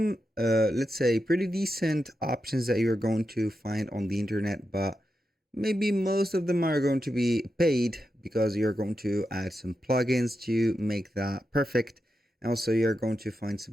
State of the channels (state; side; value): normal; both; correlation 0.88